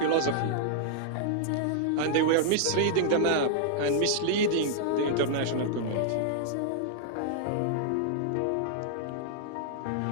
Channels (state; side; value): different; both; correlation -0.01